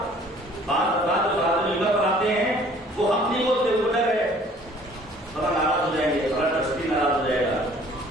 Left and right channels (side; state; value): both; normal; correlation 0.54